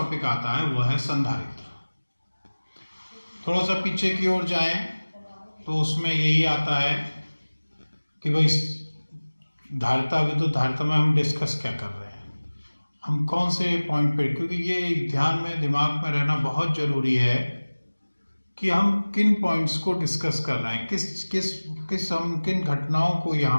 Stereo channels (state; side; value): inverted; both; correlation -1.00